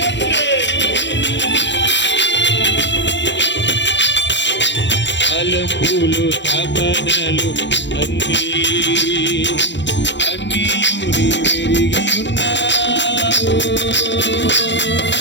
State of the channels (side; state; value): right; late; 0.52 ms